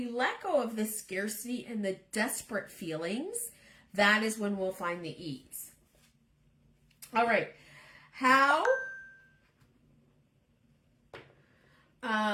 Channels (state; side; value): identical; both; correlation 1.00